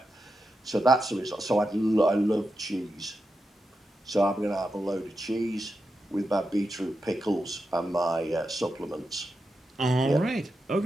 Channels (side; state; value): both; normal; correlation 0.88